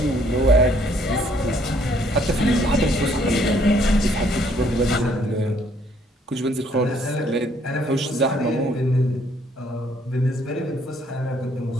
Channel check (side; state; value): both; normal; correlation 0.65